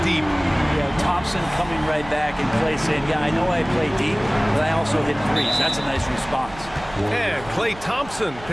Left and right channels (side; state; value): right; noise; hum, 17 dB below the sound